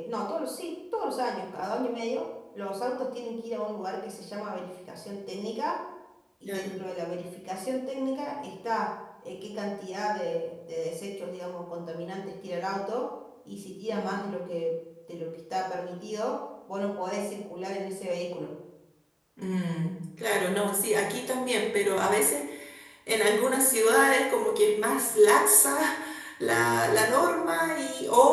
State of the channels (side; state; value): both; identical; correlation 1.00